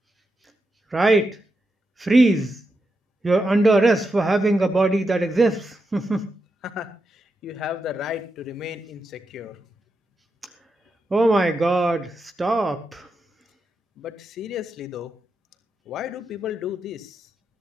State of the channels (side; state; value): both; normal; correlation 0.86